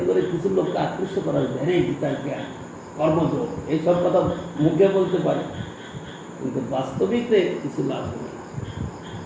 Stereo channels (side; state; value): both; identical; correlation 1.00